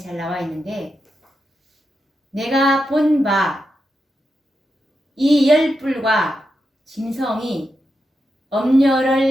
나와 있는데, 내가 본 바 이 열불과 짐승이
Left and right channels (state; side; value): normal; both; correlation 0.87